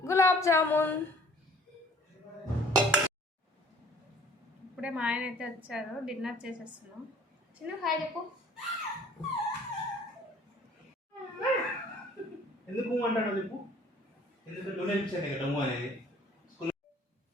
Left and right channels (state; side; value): normal; both; correlation 0.55